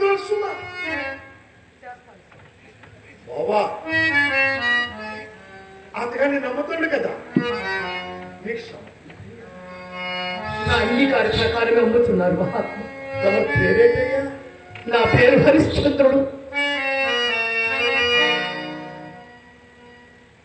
బాబా అందుకని నమ్ముతుండు కదా నా అంగీకార ప్రకారమే అమ్ముతున్నారు మహాత్మ తమ పేరేటయ్యా నా పేరు హరిశ్చంద్రుడు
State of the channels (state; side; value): identical; both; correlation 1.00